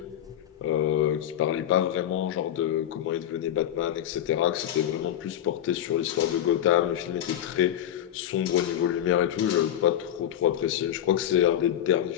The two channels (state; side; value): quieter; right; 10.9 dB